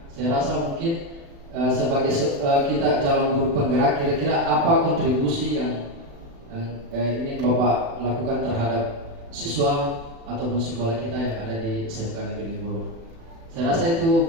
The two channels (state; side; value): late; left; 36 ms